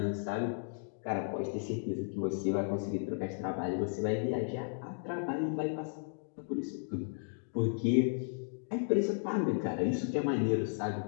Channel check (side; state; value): right; silent; digital silence